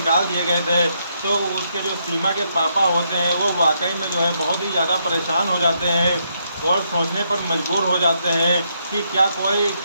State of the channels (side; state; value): both; inverted; correlation -0.77